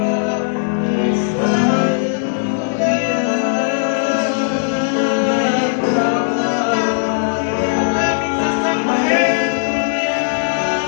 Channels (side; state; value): right; silent; digital silence